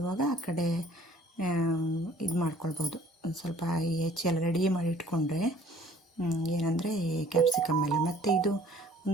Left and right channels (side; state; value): both; normal; correlation 0.55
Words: ಆ ಕಡೆ ಇದು ಮಾಡ್ಕೊಳ್ಬೋದು. ಒಂದು ಸ್ವಲ್ಪ ಹೆಚ್ಚಿ ಎಲ್ಲ ರೆಡಿ ಮಾಡಿ ಇಟ್ಕೊಂಡ್ರೆ ಏನಂದರೆ ಈ ಕ್ಯಾಪ್ಸಿಕಮ್ ಎಲ್ಲ. ಮತ್ತು ಇದು